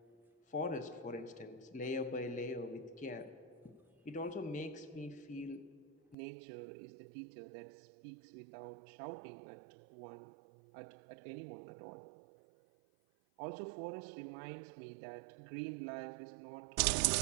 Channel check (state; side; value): drops out; left; at 6.2 s